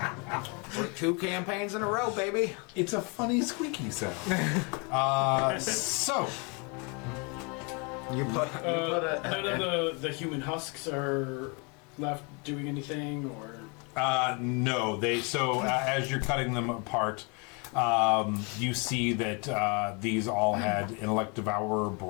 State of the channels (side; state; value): right; quieter; 32.3 dB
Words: We're 2 campaigns in a row, baby. It's a funny squeaky sound. So You put None of the human husks are left doing anything, or no, they. So as you're cutting them apart, you see that these all had intellect devourer